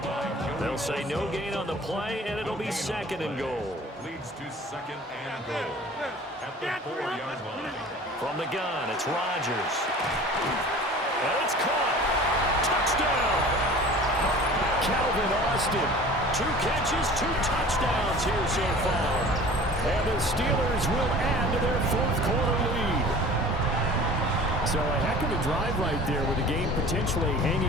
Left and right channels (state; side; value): normal; both; correlation 0.44